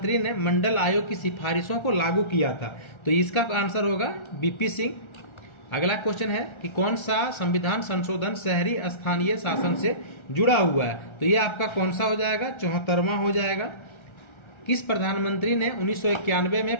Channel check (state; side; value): late; right; 1.3 ms